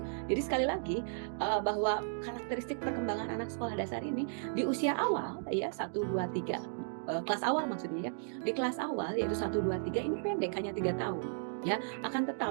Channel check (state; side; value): silent; left; digital silence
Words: Jadi sekali lagi bahwa karakteristik perkembangan anak sekolah dasar ini di usia awal, ya, 1, 2, 3, kelas awal maksudnya, ya. Di kelas awal yaitu 1, 2, 3 ini pendek, hanya 3 tahun, ya. Akan